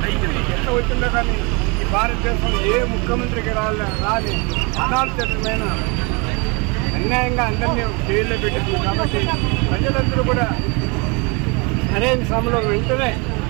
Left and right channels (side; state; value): left; quieter; 30.0 dB